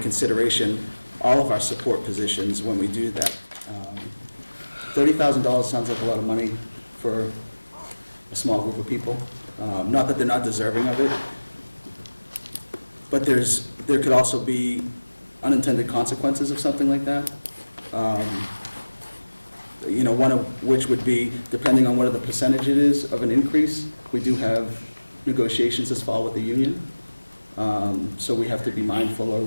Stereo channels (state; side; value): inverted; both; correlation -1.00